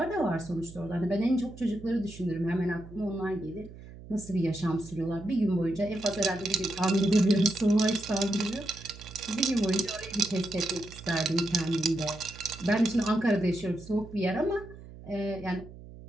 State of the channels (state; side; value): noise; right; hum, 16 dB below the sound